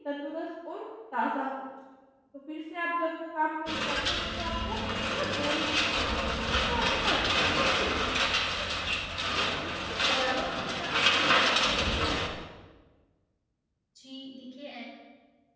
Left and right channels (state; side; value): identical; both; correlation 1.00